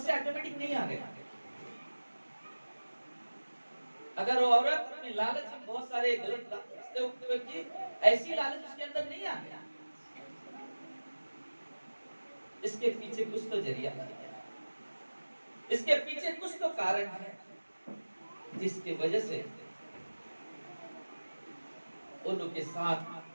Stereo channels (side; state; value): both; inverted; correlation -1.00